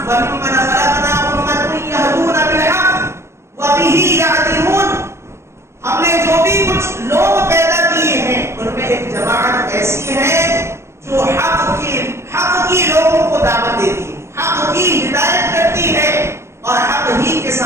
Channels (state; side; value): late; left; 0.13 ms